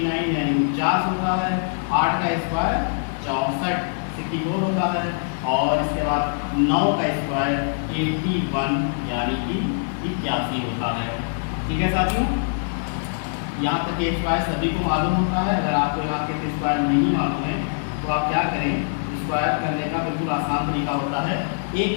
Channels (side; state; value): right; silent; 63 dB below the other